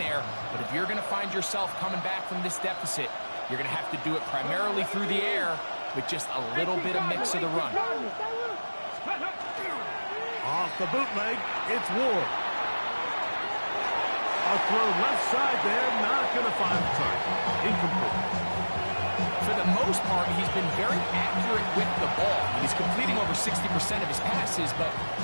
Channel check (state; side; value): inverted; both; correlation -1.00